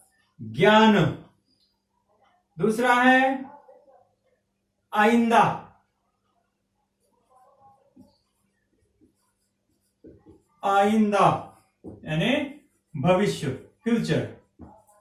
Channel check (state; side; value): identical; both; correlation 1.00